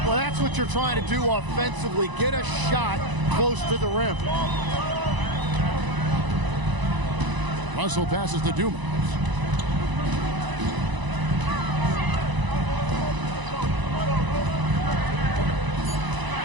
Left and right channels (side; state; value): left; late; 1.0 ms